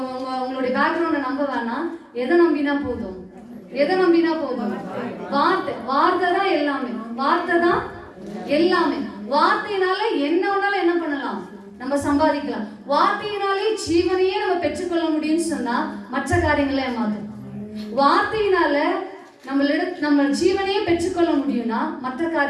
உங்களுடைய பேக்ரவுண்டை நம்ப வேணாம். எதை நம்பினா போதும்? வார்த்தை தான் எல்லாமே. வார்த்தை தான் எல்லாமே. வார்த்தையினால என்ன வேணாலும் என்ன பண்ணலாம்? நம்ம சம்பாதிக்கலாம். வார்த்தையினாலே ஜீவனையே நம்ம பெற்றுக்கொள்ள முடியும்னு சொன்னா மற்ற காரியங்களை ஏமாத்தும். வார்த்தையினால நம்ம ஜீவனையே பெற்றுக்கொள்ள முடியும்னா மற்ற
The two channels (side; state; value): both; identical; correlation 1.00